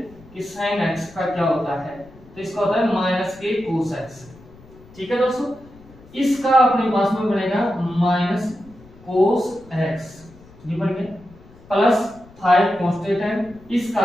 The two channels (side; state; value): left; noise; rumble, 23 dB below the sound